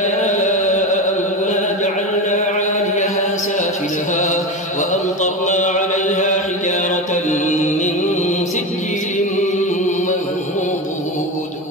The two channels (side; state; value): both; normal; correlation 0.21